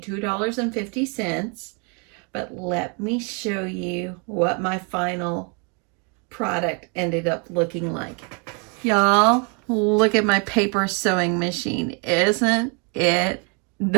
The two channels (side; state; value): left; quieter; 35.2 dB